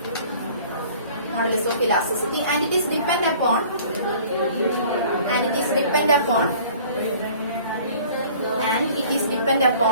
modulus of elasticity, and it is depend upon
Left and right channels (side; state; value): both; inverted; correlation -0.50